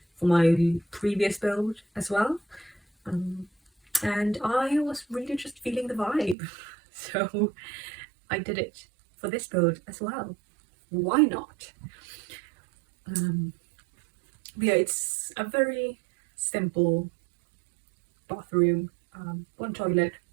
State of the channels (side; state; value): left; drops out; at 6.4 s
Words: for my previous build as well. And I was really just feeling the vibe, so I did it for this build as well. Why not? But yeah, it's a very simple bathroom. One toilet,